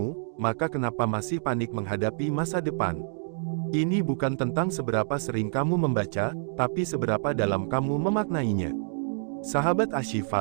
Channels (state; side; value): silent; left; digital silence